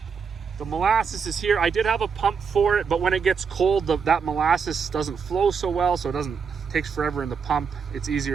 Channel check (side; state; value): left; quieter; 6.0 dB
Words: The molasses is here. I did have a pump for it, but when it gets cold, that molasses doesn't flow so well, so it takes forever in the pump. It's